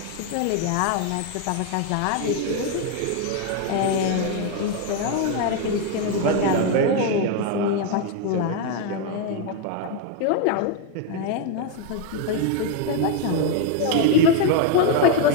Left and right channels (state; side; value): different; both; correlation 0.01